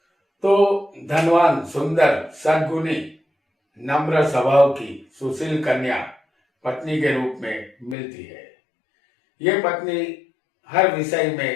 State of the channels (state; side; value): drops out; right; at 8.0 s